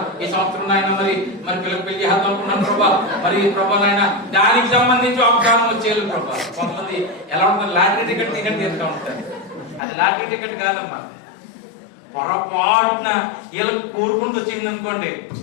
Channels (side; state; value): right; drops out; at 9.8 s